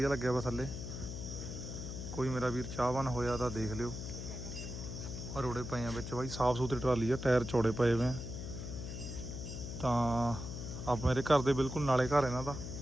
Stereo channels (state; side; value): noise; left; hum, 7 dB below the sound